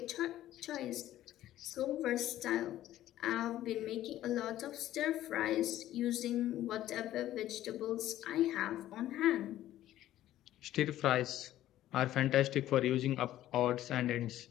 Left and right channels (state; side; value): quieter; right; 13.5 dB